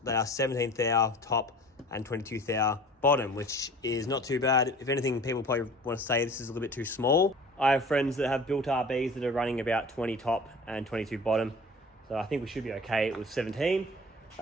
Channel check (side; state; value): both; normal; correlation 0.43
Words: they are 17 thou top and 22 thou bottom, which is not too bad. If anything, people probably want to say this is a little bit too small. I have friends that have built RBs that are running about 20 top and 22 bottom. So I think we should be okay with 17.